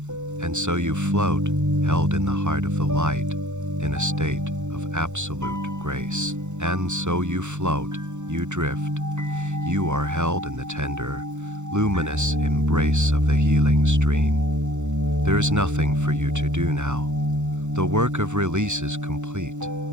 And so you float, held in the heart of the light, in a state of absolute grace. And so you float, you drift. You are held in the tender, luminous embrace of the healing stream. There is nothing for you to do now. The work of release is complete.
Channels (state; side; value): late; left; 0.84 ms